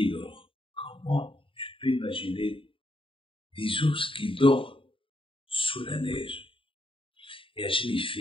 dorment. Comment tu peux imaginer des ours qui dorment sous la neige? Et Hachem, il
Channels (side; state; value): right; late; 0.25 ms